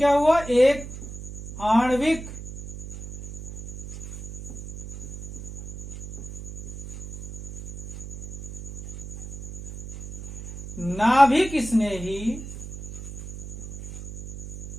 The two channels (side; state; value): right; noise; hum, 10 dB below the sound